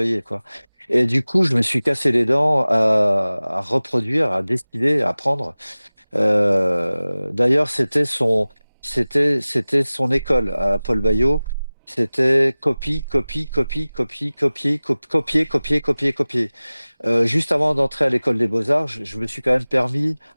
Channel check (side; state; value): both; inverted; correlation -0.98